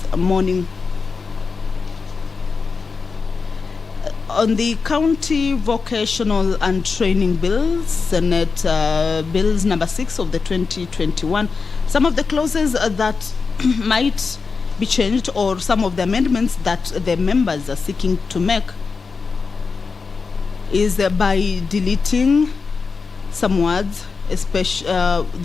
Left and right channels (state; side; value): quieter; right; 4.8 dB